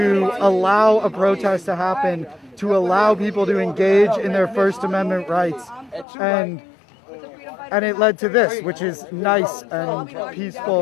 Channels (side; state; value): right; drops out; at 6.1 s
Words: allow a protest to happen, to allow people to engage in their First Amendment rights. And it led to this, which is nice and